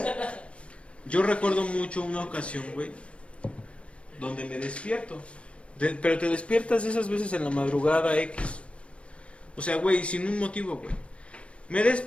yo recuerdo mucho una ocasión, güey, donde me despierto. Pero te despiertas esas veces en la madrugada X. O sea, güey, sin un motivo, güey. Me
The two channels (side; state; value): right; late; 0.061 ms